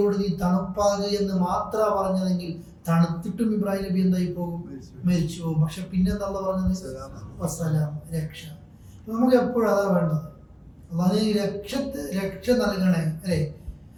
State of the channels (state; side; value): identical; both; correlation 1.00